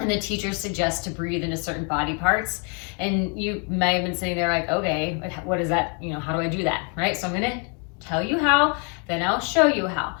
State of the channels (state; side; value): quieter; right; 37.9 dB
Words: the teacher suggests to breathe into certain body parts, and you may have been sitting there like, okay, what is that? How do I do that? Right? So I'm going to tell you how, then I'll show you how.